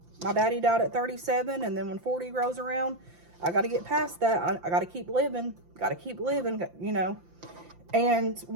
My daddy died at 37, and then when 40 rolls around, I got to get past that. I got to keep living, you know. And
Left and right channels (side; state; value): left; late; 5.8 ms